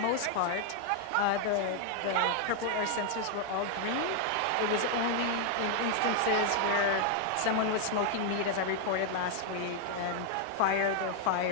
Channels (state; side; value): different; both; correlation 0.00